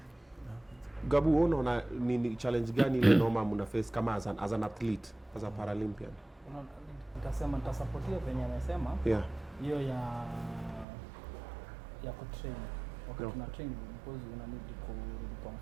Gabu, unaona ni challenge gani ile noma mna face kama as an athlete, as a Paralympian? Nitasema nitasupport venye anasema. Yeah. Hiyo ya kutrain. Wakati tuna train because una need kurudi kwa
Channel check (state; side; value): drops out; left; at 10.9 s